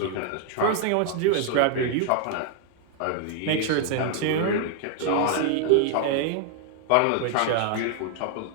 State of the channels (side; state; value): both; different; correlation 0.00